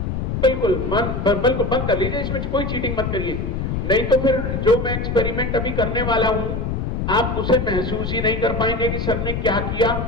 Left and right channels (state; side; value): noise; left; rumble, 2 dB below the sound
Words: बिल्कुल बिल्कुल बंद कर लीजिए, इसमें कोई चीटिंग मत करिए, नहीं तो फिर जो मैं एक्सपेरिमेंट अभी करने वाला हूं आप उसे महसूस ही नहीं कर पाएंगे कि सर ने क्या किया